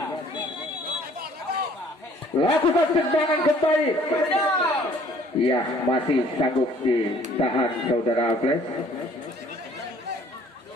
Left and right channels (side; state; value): both; normal; correlation 0.56